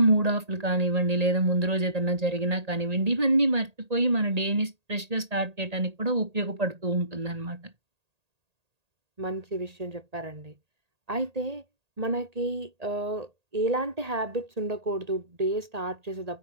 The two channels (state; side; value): late; left; 1.8 ms